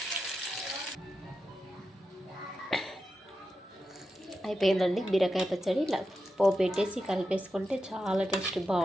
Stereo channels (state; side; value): normal; both; correlation 0.90